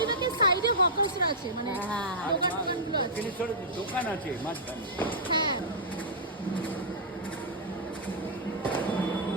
সাইডে হকার্সরা আছে, মানে দোকানগুলো আছে। দক্ষিণেশ্বরে দোকান আছে মাঝখানে। হ্যাঁ,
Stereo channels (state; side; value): normal; both; correlation -0.12